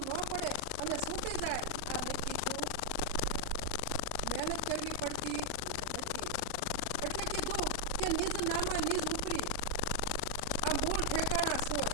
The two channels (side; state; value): both; different; correlation 0.00